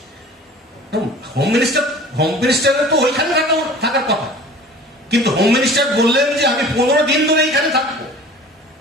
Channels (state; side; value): normal; both; correlation 0.44